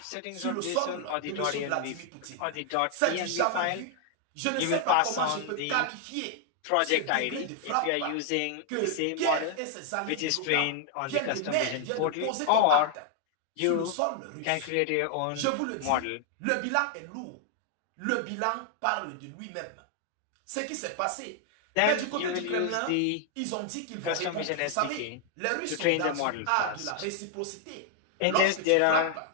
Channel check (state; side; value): different; both; correlation 0.00